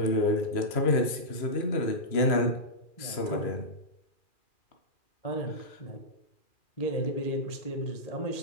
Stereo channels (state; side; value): late; right; 2.4 ms